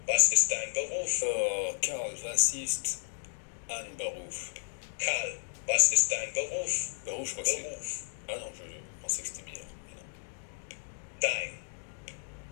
was ist dein Beruf? Karl, was ist ein Beruf? Karl, was ist dein Beruf? Beruf, je crois que c'est... Beruf. Ah non, je pensais que c'était bien. Dein.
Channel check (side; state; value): right; silent; 56 dB below the other